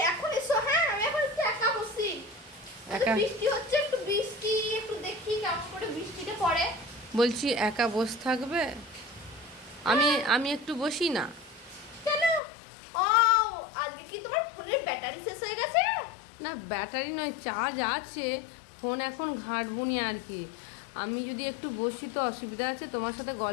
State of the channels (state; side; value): drops out; right; at 12.4 s